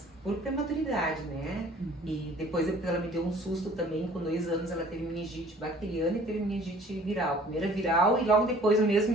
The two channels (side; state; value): both; normal; correlation 0.52